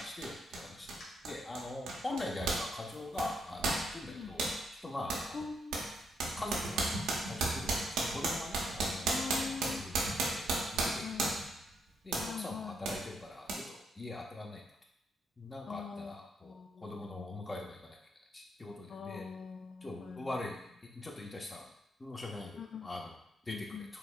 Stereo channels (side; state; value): both; normal; correlation 0.76